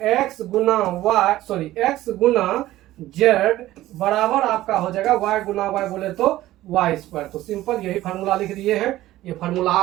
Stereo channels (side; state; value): left; quieter; 15.5 dB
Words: एक्स गुना वाई, सॉरी एक्स गुना जेड बराबर आपका हो जाएगा वाई गुना वाई बोले तो वाई स्क्वायर। तो सिंपल यही फार्मूला लिख दिए हैं। ये फार्मूला